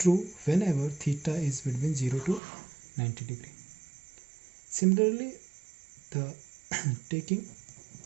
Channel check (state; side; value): drops out; left; at 2.4 s